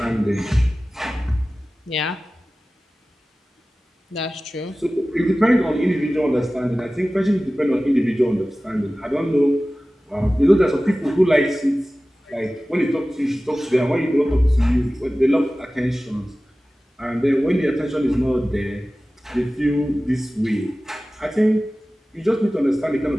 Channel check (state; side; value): normal; both; correlation 0.97